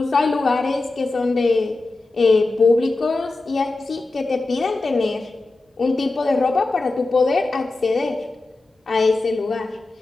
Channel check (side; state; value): right; quieter; 3.2 dB